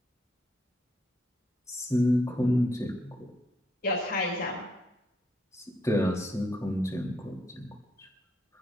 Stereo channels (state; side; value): normal; both; correlation 0.75